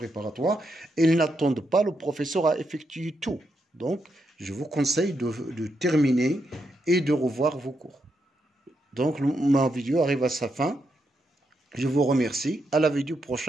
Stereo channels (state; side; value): normal; both; correlation 0.82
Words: ils n'attendent pas le professeur à effectuer tout. Donc, je vous conseille de terminer et de revoir vos cours. Donc, ma vidéo arrive à sa fin. Je vous remercie. À la vidéo